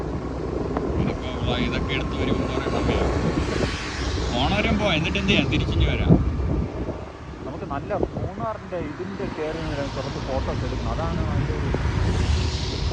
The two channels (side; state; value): both; identical; correlation 1.00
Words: ഇതൊക്കെ എടുത്ത് വരുമ്പോൾ കുറേ സമയം ഓണവരം പോവാം. എന്നിട്ട് എന്ത് ചെയ്യാം? തിരിച്ചിഞ്ഞ് വരാം. നമുക്ക് നല്ല മൂന്നാറിൻ്റെ ഇതിൻ്റെ കയറി കുറച്ച് ഫോട്ടോസ് എടുക്കണം. അതാണ് അതിൻ്റെ ഒരു